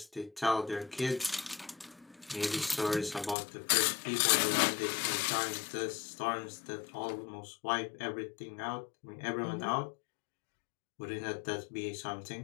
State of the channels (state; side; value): drops out; right; at 3.4 s